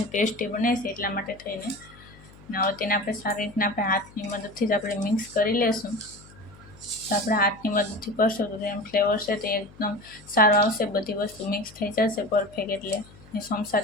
ટેસ્ટી બને છે. એટલા માટે થઈને હવે તેને આપણે સારી રીતના આપણે હાથની મદદથી જ આપણે મિક્સ કરી લેશું. તો આપણે હાથની મદદથી કરશું તો તેનો ફ્લેવર છે તે એકદમ સારો આવશે. બધી વસ્તુ મિક્સ થઈ જશે પરફેક્ટ. એટલે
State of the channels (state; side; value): noise; left; hum, 22 dB below the sound